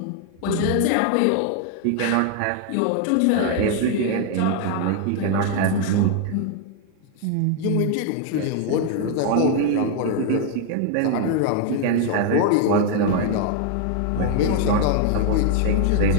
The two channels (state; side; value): different; both; correlation 0.00